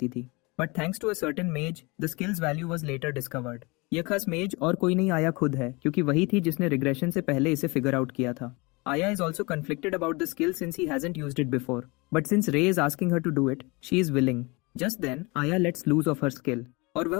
थी। But thanks to a certain maize the skills value was later discovered. यह खास मेज और कोई नहीं आया खुद है क्योंकि वही थी जिसने रिग्रेशन से पहले इसे फिगर आउट किया था। Aya is also conflicted about the skill since he hasn't used it before. But since Ray is asking her to do it, she is willing. Just then, Aya lets loose of her skill. और वह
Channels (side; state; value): right; quieter; 26.5 dB